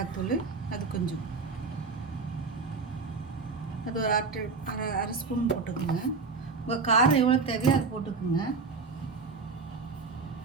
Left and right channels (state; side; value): quieter; left; 4.5 dB